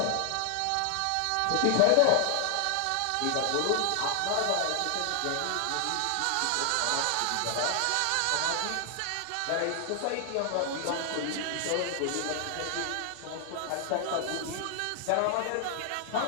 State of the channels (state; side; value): different; both; correlation 0.00